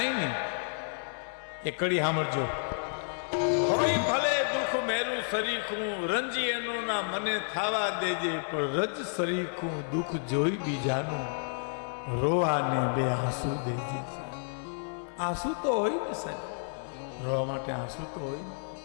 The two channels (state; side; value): silent; right; 57 dB below the other